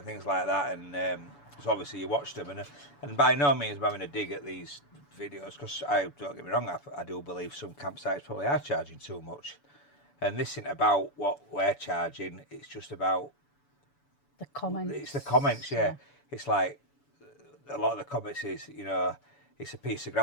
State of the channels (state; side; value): late; right; 7.0 ms